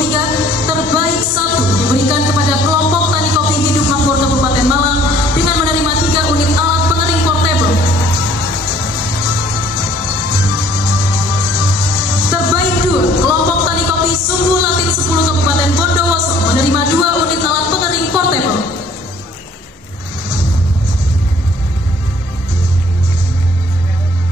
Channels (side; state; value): both; normal; correlation 0.57